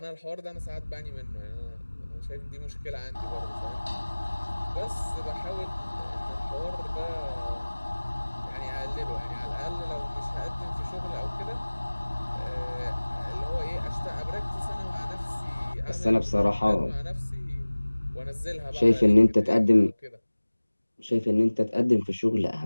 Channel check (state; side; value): inverted; both; correlation -1.00